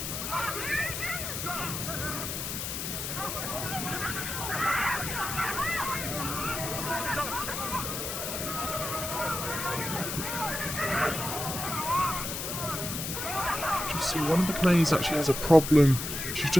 See, one of the players actually has a problem. She's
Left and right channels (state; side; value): noise; left; hiss, 4 dB below the sound